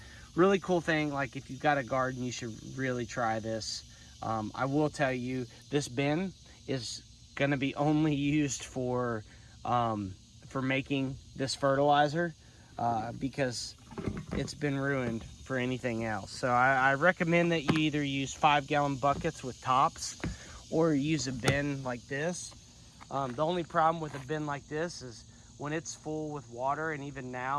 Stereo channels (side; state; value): both; identical; correlation 1.00